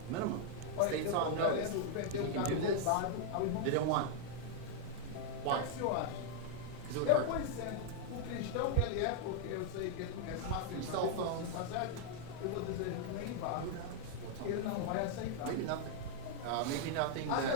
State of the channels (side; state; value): both; different; correlation 0.00